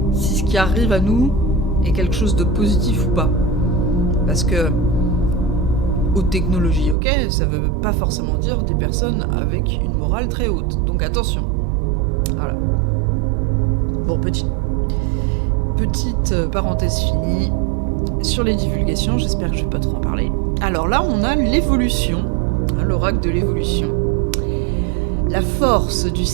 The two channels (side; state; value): left; drops out; at 7.0 s